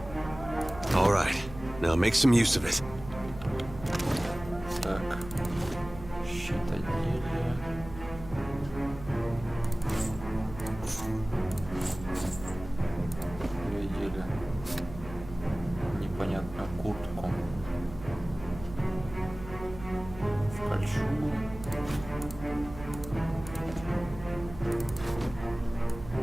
2. All right, now make some use of it. Так. Щитоделие. Видели непонятную куртку. В кольчугу.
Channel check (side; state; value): right; noise; hum, 14 dB below the sound